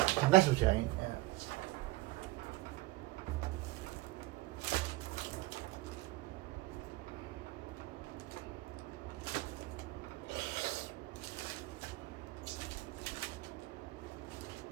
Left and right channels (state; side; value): quieter; left; 20.1 dB